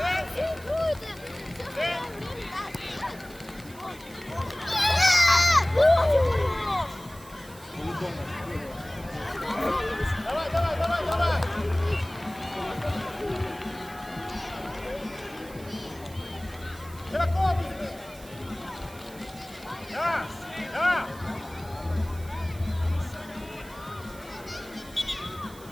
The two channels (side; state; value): right; noise; hiss, 20 dB below the sound